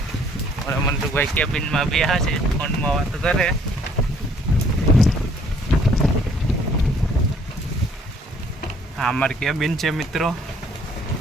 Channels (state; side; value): normal; both; correlation 0.61